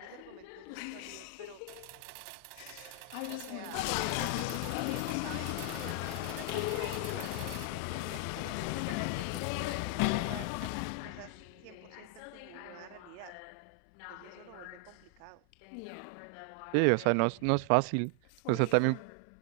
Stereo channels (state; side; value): different; both; correlation 0.00